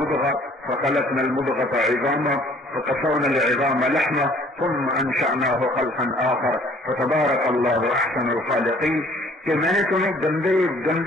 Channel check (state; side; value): normal; both; correlation 0.56